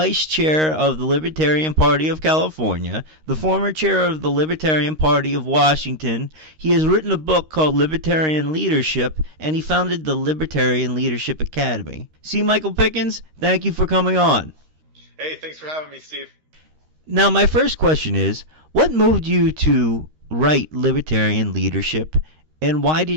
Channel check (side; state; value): left; late; 13 ms